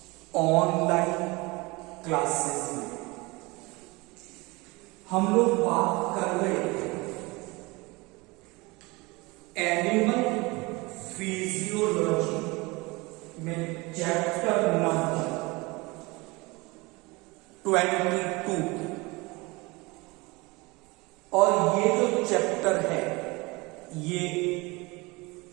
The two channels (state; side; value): quieter; left; 24.4 dB